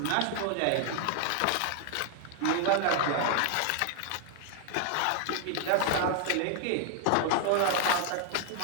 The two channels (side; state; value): both; different; correlation 0.00